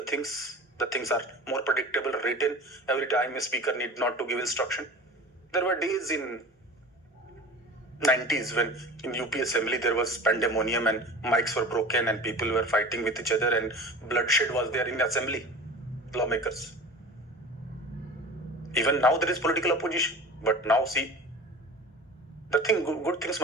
things. The things are more predictable, written. Every time a speaker need not to give instruction. There were days in 90s when in UP Assembly there was pandemonium and mics were broken and people were fighting with each other and bloodshed was there in Assembly, lawmakers. Even now there is political opposition, but now see, the thing, good things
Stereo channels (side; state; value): both; normal; correlation 0.37